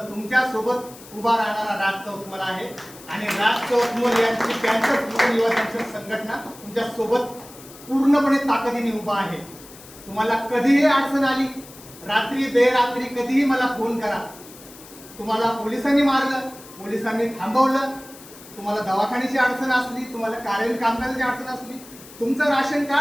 सोबत उभा राहणारा राज चौतमल आहे आणि राज चौतमल यांची कॅन्सर युवा संघटना तुमच्या सोबत पूर्णपणे ताकदीने उभा आहे. तुम्हाला कधीही अडचण आली, रात्री बेरात्री कधीही मला फोन करा. तुम्हाला पोलिसांनी मारलं, पोलिसांनी थांबवलं, तुम्हाला दवाखान्याची अडचण असली, तुम्हाला कार्यालयीन कामकाजाची अडचण असली, तुमचं राशन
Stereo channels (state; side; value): noise; left; hiss, 19 dB below the sound